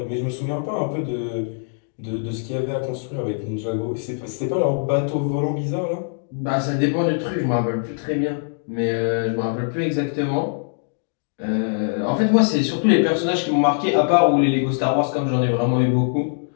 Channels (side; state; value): right; silent; digital silence